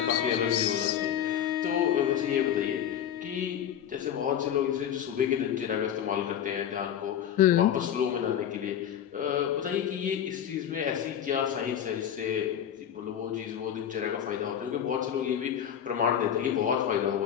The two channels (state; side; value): quieter; right; 9.5 dB